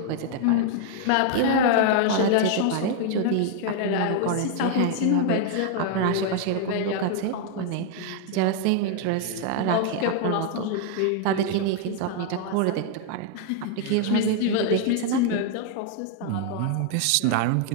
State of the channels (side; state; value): both; different; correlation 0.00